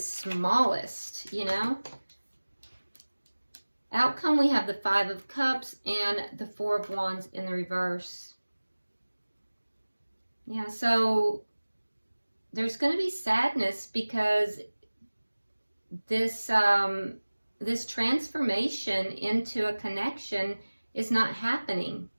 you know? Outcome, we have the 5 of Cups and the 4 of Wands in the reverse. Yeah, so there's going to be sadness because this this transformation into a connection is not happening.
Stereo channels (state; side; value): inverted; both; correlation -1.00